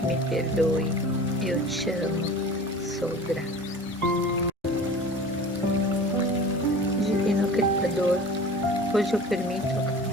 me perdoe, eu te amo, sou grata. Divino Criador, hoje eu permito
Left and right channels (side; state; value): both; normal; correlation 0.39